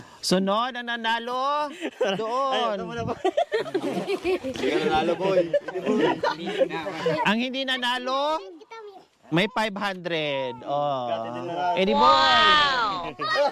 Sunod ang nanalo doon. Ito muna po. Hindi ka nanalo, boy. Ang hindi nanalo, may 500. Oh. Eddie Boy.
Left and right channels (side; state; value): both; identical; correlation 1.00